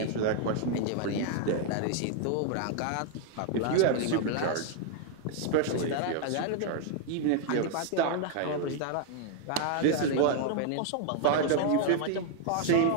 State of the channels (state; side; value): different; both; correlation 0.00